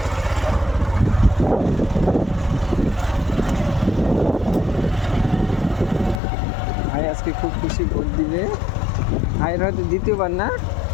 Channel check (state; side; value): drops out; right; at 6.2 s